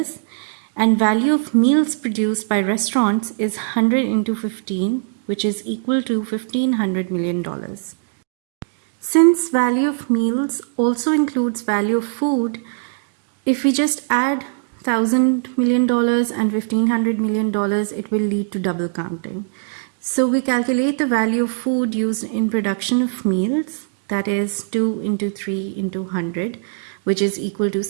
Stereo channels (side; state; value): left; silent; 65 dB below the other